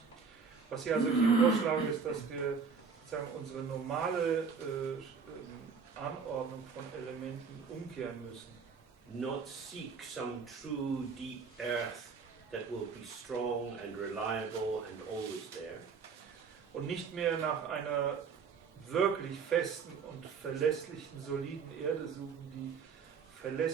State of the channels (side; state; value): left; quieter; 5.6 dB